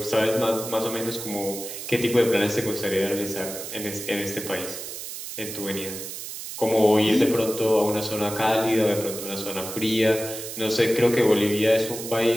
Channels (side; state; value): right; noise; hiss, 9 dB below the sound